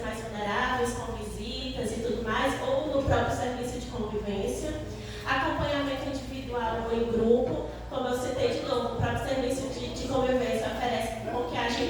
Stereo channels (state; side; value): identical; both; correlation 1.00